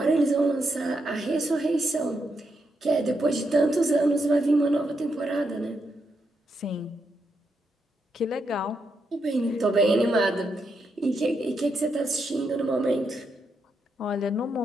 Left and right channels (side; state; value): both; normal; correlation 0.82